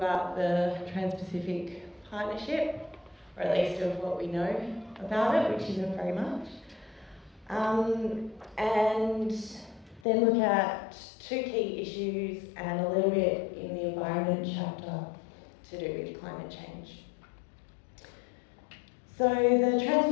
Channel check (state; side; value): drops out; right; at 10.0 s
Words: the Trans-Pacific Partnership, or at least of what we know about it, which isn't very much. And then look at two key issues and a little bit in the environment chapter to do with climate change. So the